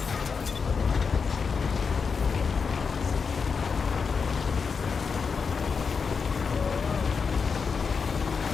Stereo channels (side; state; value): right; quieter; 5.5 dB